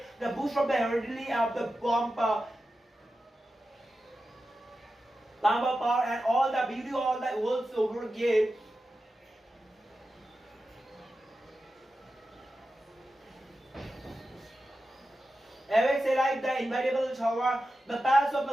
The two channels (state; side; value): normal; both; correlation 0.92